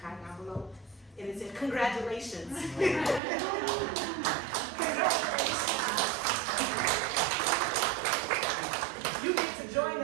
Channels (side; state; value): left; drops out; at 3.2 s